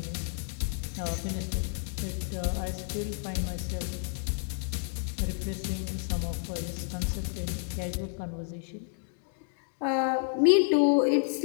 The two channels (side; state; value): right; silent; 58 dB below the other